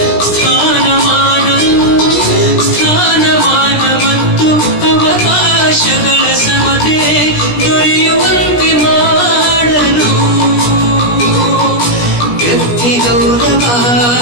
ಸ್ಥಾನಮಾನ ಮತ್ತು ಅವಕಾಶಗಳ ಸಮತೆ ದೊರೆಯುವಂತೆ ಮಾಡಲು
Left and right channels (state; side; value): late; right; 17 ms